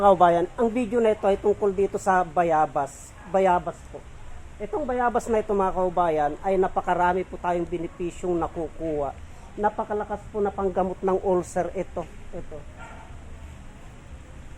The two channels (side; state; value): both; identical; correlation 1.00